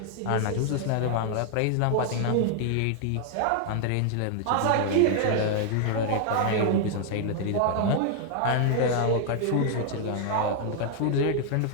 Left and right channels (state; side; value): different; both; correlation 0.00